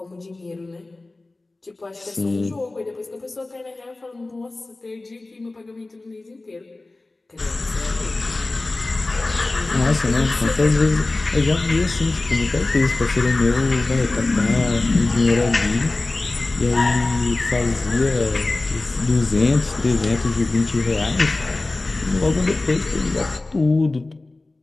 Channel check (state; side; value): quieter; right; 3.1 dB